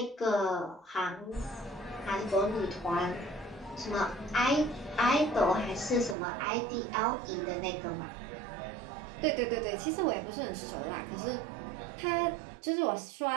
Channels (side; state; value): left; drops out; at 6.2 s